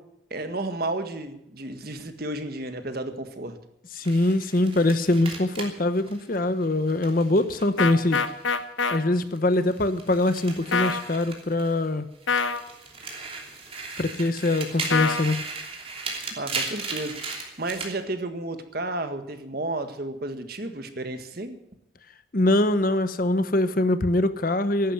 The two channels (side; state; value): both; normal; correlation 0.52